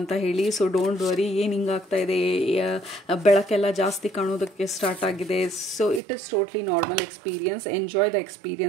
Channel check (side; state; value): left; drops out; at 6.0 s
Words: ಹೇಳಿ. ಸೊ ಡೋಂಟ್ ವರಿ, ಏನು ಹಿಂಗಾಗ್ತಾ ಇದೆ, ಬೆಳಕೆಲ್ಲ ಜಾಸ್ತಿ ಕಾಣೋದಕ್ಕೆ ಸ್ಟಾರ್ಟ್ ಆಗಿದೆ. So it is totally normal experience, enjoy the